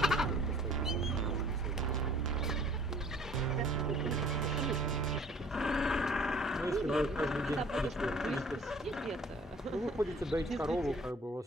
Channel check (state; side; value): normal; both; correlation 0.52